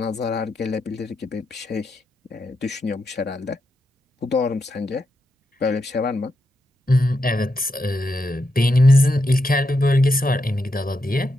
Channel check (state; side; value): normal; both; correlation 0.84